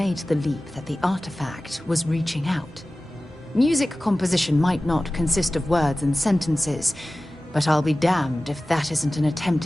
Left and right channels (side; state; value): both; normal; correlation 0.96